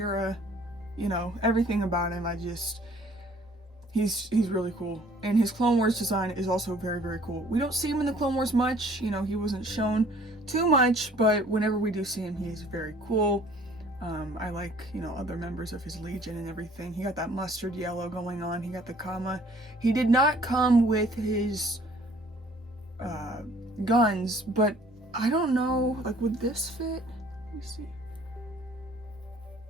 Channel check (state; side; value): normal; both; correlation 0.56